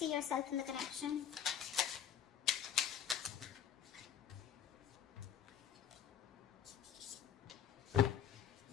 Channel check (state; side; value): quieter; right; 8.9 dB